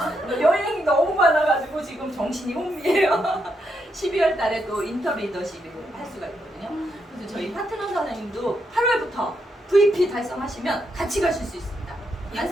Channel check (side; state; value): both; normal; correlation 0.80